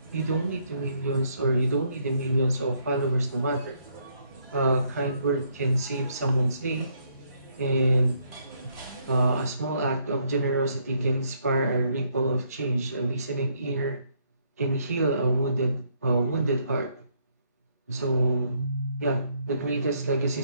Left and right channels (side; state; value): both; inverted; correlation -0.71